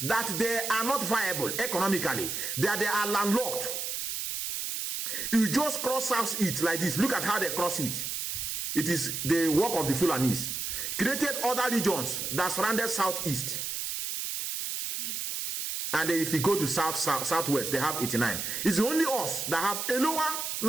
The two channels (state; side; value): noise; right; hiss, 3 dB below the sound